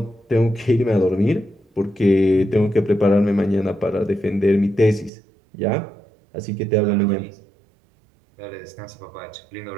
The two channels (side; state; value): left; drops out; at 5.1 s